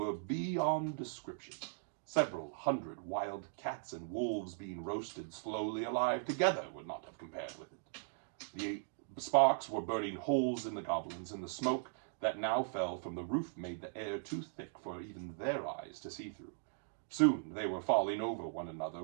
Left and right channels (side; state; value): left; silent; digital silence